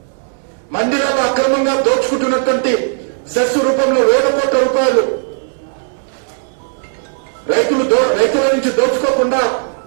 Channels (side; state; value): left; silent; 69 dB below the other